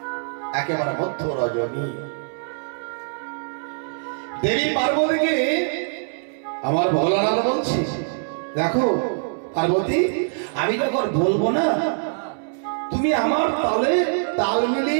একেবারে মধ্য রজনী দেবী পার্বতীকে আমার ভোলানাথ বলছি, দেখো পার্বতী, আমি যখন বলবো না, তুমি আমার তালে তাল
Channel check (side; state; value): left; silent; 63 dB below the other